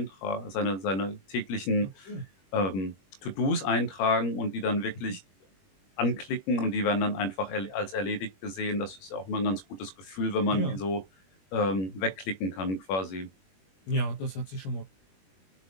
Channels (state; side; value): late; right; 21 ms